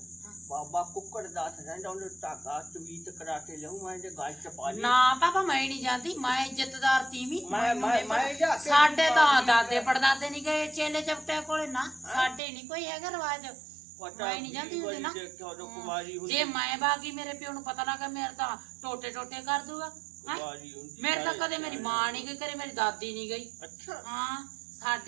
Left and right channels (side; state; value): left; drops out; at 12.4 s